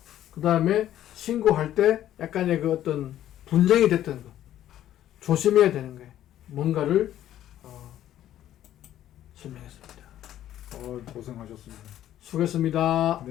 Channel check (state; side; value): quieter; right; 12.2 dB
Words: 그 다음에 신고할 때 약간의 그 어떤 분쟁이 됐던 거, 조심해야 되는 거예요. 뭔가를 설명했습니다. 고생하셨습니다. 수고했습니다.